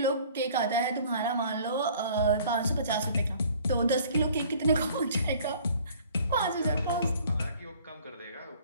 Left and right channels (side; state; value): both; inverted; correlation -0.53